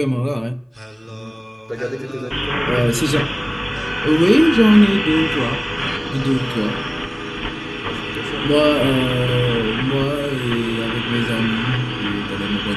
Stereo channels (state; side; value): identical; both; correlation 1.00